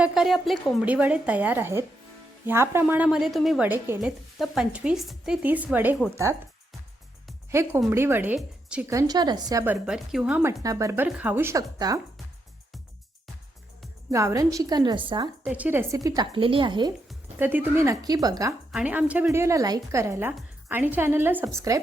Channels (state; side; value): normal; both; correlation 0.81